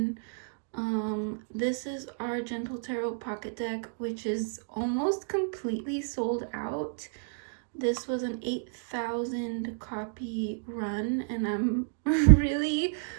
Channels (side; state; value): left; silent; digital silence